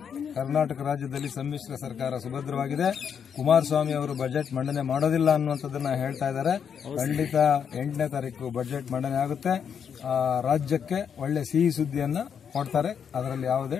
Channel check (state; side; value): quieter; right; 7.5 dB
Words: ಕರ್ನಾಟಕ ರಾಜ್ಯದಲ್ಲಿ ಸಮ್ಮಿಶ್ರ ಸರ್ಕಾರ ಸುಭದ್ರವಾಗಿದೆ. ಕುಮಾರಸ್ವಾಮಿ ಅವರು ಬಜೆಟ್ ಮಂಡನೆ ಮಾಡೋದಿಲ್ಲ ಅನ್ನುವಂಥದ್ದನ್ನ ಹೇಳ್ತಾ ಇದ್ದಾರೆ. ಖಂಡಿತ 8ನೇ ತಾರೀಕು ಬಜೆಟ್ ಮಂಡನೆ ಆಗುತ್ತೆ. ರಾಜ್ಯಕ್ಕೆ ಒಳ್ಳೆ ಸಿಹಿ ಸುದ್ದಿಯನ್ನ ಕೊಡ್ತಾರೆ, ಅದರಲ್ಲಿ ಯಾವುದೇ